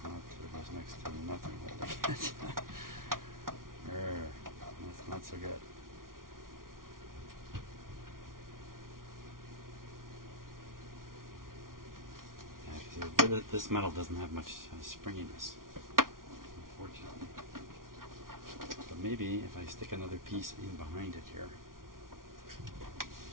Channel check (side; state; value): left; late; 0.91 ms